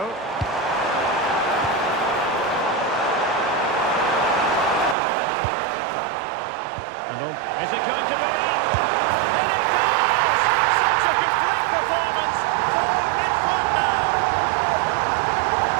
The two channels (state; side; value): drops out; left; at 5.0 s